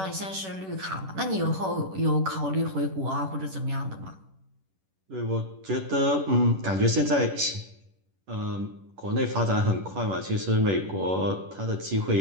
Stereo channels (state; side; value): late; left; 10 ms